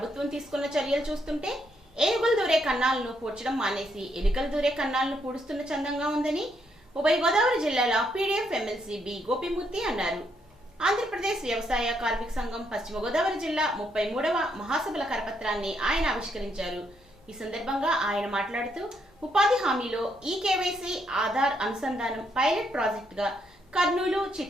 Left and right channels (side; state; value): both; normal; correlation 0.75